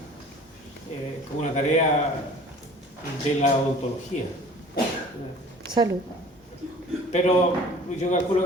tarea de la odontología. Salud. Pero yo calculo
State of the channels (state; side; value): normal; both; correlation 0.47